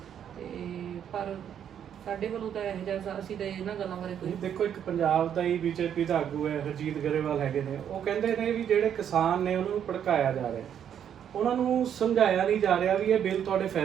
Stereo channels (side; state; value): left; quieter; 9.1 dB